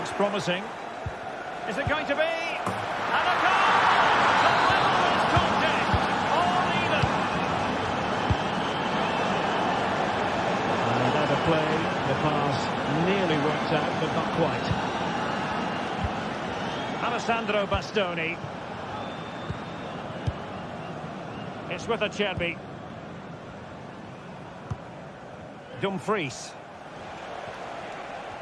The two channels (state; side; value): identical; both; correlation 1.00